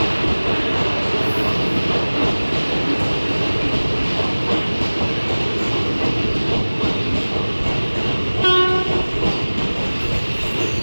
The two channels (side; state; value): both; inverted; correlation -1.00